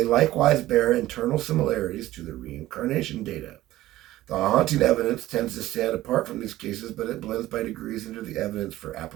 likewise bear internal similarities to the reincarnation data. The haunting evidence tends to stand apart from these cases, but it blends by degrees into the evidence for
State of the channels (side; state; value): left; quieter; 15.7 dB